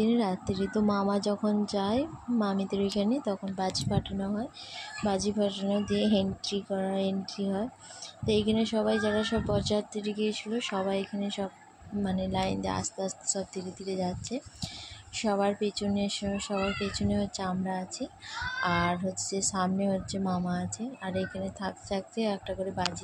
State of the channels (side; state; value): both; identical; correlation 1.00